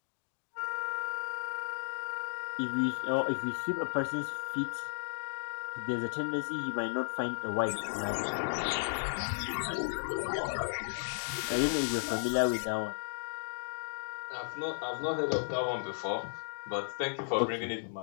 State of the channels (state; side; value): silent; right; digital silence